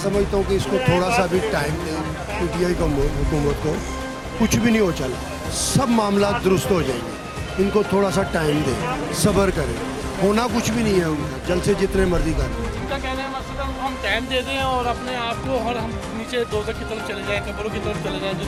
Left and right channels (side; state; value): both; identical; correlation 1.00